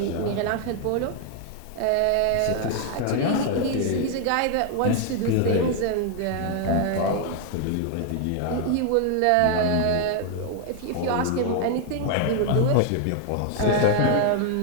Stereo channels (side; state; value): both; different; correlation 0.00